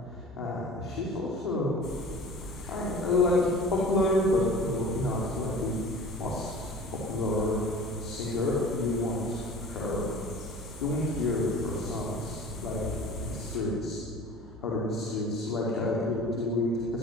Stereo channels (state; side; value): normal; both; correlation 0.41